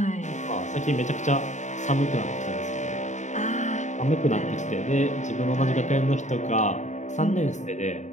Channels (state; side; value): late; right; 0.34 ms